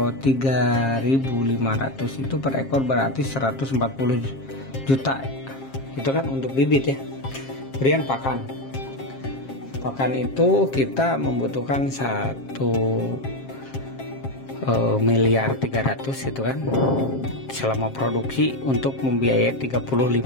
3.500 itu per ekor berarti 140 juta. Itu kan untuk bibit ya. Kemudian pakan. Pakan itu kita membutuhkan 1.300.000.000 itu kan selama produksi untuk membiayai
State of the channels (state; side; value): late; right; 7.5 ms